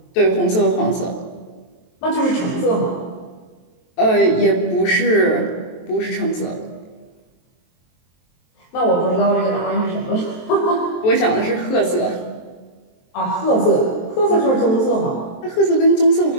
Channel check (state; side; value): late; right; 23 ms